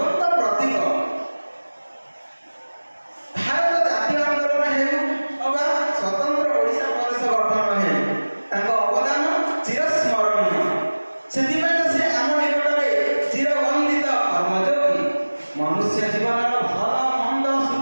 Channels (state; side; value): inverted; both; correlation -1.00